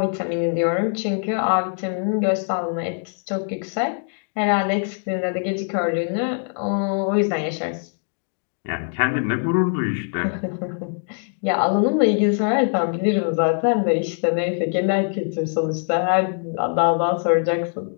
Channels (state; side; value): silent; right; 63 dB below the other